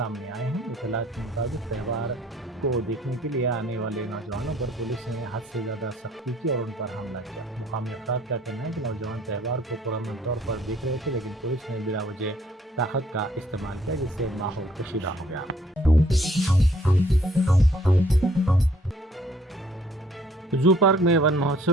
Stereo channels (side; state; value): both; normal; correlation 0.61